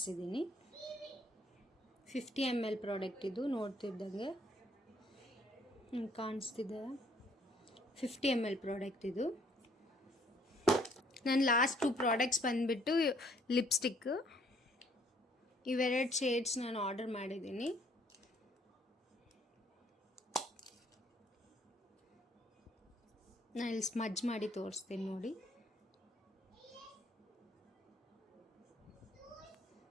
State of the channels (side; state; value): both; normal; correlation 0.63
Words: 50 ml ಪ್ರಾಡಕ್ಟ್ ಇದು, ನೋಡ್ತಿದ್ದಂಗೆ ಕಾಣಿಸ್ತಿದೆ. 50 ml ಪ್ರಾಡಕ್ಟ್ ಇದು. ನನ್ನ ಲಾಸ್ಟ್ 2 ಪ್ರಾಡಕ್ಟ್ಸ್ ಬಂದುಬಿಟ್ಟು ಲಿಪ್ಸ್ಟಿಕ್. ಇವೆರಡು ಶೇಡ್ಸ್ ನಾನು ಆರ್ಡರ್ ಮಾಡಿದ್ದೀನಿ. ನಾನು ಇಲ್ಲಿ ಸ್ಮಜ್ ಮಾಡಿ ತೋರಿಸ್ತೀನಿ ನೋಡಿ.